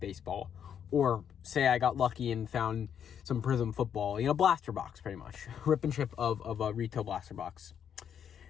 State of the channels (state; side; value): quieter; right; 8.5 dB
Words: Or say I got lucky and found some Prism football, blaster box pretty much. Rip and ship of a retail blaster box.